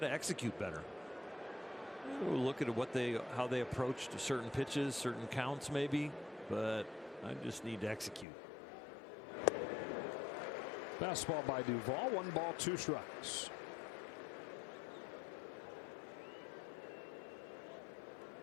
to execute better. We'll look at how they approached certain pitches, certain counts maybe, but I just need to execute. Fastball by Duvall, 1 ball, 2 strikes.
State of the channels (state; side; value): drops out; right; at 8.2 s